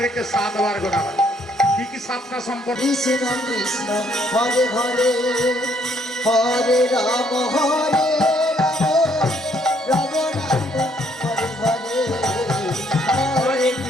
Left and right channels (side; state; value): both; normal; correlation 0.68